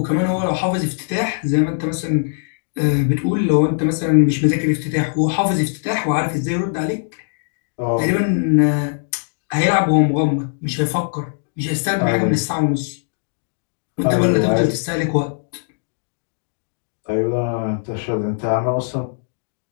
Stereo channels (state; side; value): silent; right; digital silence